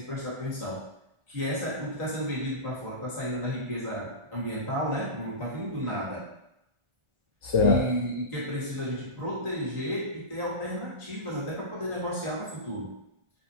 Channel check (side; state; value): left; late; 1.4 ms